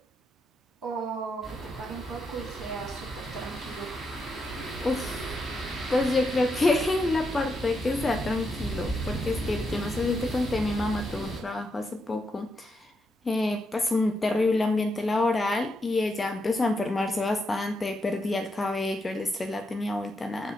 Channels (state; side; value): normal; both; correlation 0.82